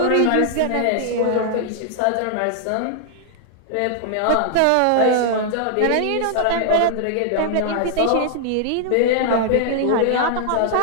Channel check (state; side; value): different; both; correlation -0.01